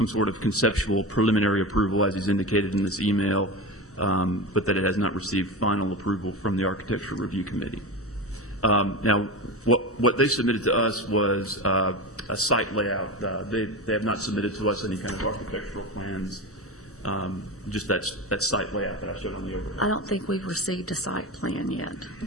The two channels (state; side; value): normal; both; correlation 0.24